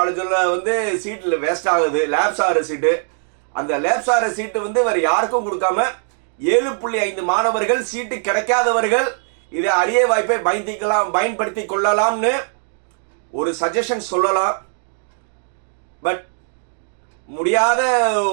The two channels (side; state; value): left; silent; 66 dB below the other